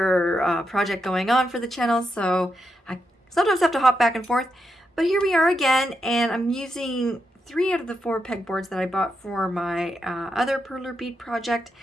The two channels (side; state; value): both; normal; correlation 0.84